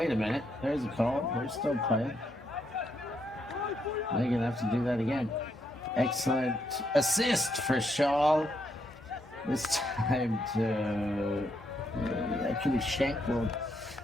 a minute, there's a call. We're still playing. They're gonna have to do that again. Excellent assist for Shaw. This time to actually Shank will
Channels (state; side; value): normal; both; correlation 0.77